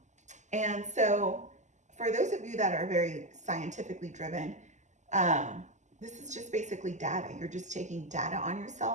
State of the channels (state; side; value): late; left; 0.34 ms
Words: so for those of you that are very scientifically driven, this is just basically data. You're just taking data on